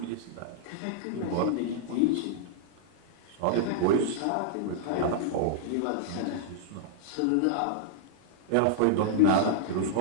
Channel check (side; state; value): both; different; correlation -0.01